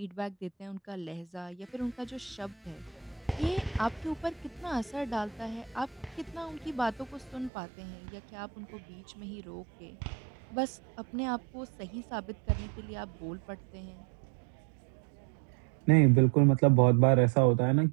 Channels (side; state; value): left; drops out; at 7.5 s